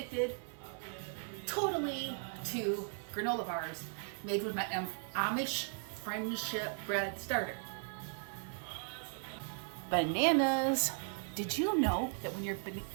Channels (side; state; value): left; silent; 53 dB below the other